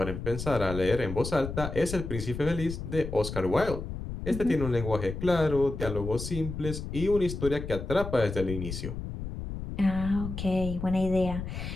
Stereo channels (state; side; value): noise; left; rumble, 7 dB below the sound